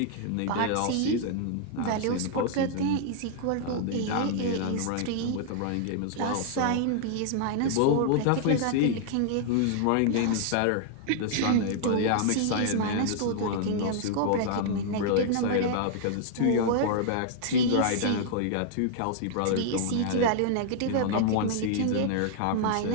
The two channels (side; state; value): both; different; correlation -0.01